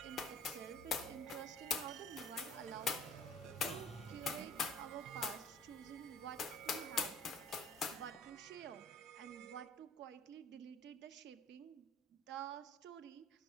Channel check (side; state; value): both; normal; correlation 0.49